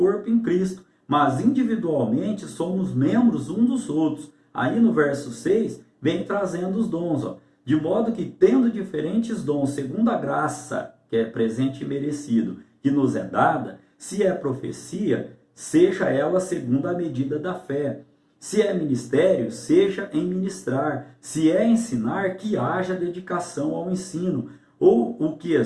em Cristo, mas individualmente somos membros uns dos outros. Aí no verso 6, vem trazendo os dons, de modo que tendo diferentes dons, segundo a graça que é presente e merecido, que nos é dada, se é profecia, seja ela segundo a medida da fé. Se é ministério, seja em ministrar. Se é ensinar, que haja dedicação ao ensino. Ou o que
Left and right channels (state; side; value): identical; both; correlation 1.00